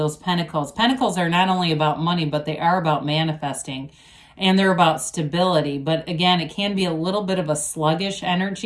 pentacles. Pentacles are not only about money, but they are about manifesting, and they're about stability. But again, it can be a little bit of a sluggish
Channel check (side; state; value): both; identical; correlation 1.00